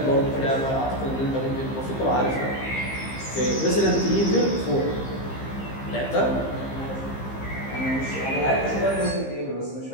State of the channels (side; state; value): right; late; 15 ms